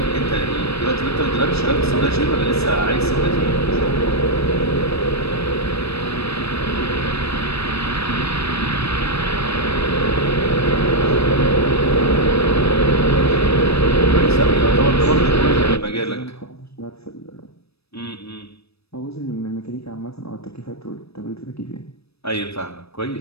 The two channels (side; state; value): right; late; 0.78 ms